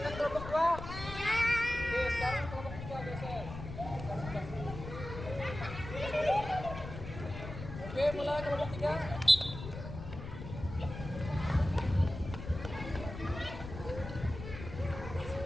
kelompok 2? Oke, sekarang kelompok 3 geser. Oke, mulai kelompok 3.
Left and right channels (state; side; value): noise; left; rumble, 9 dB below the sound